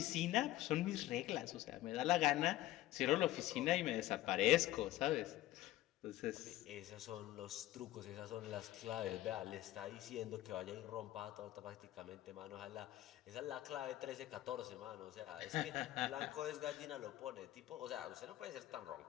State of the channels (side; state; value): right; quieter; 15.4 dB